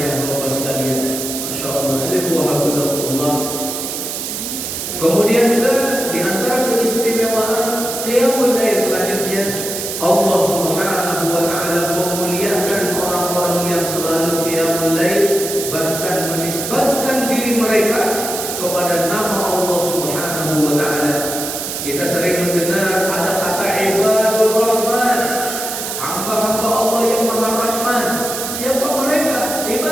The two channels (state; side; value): noise; right; hiss, 5 dB below the sound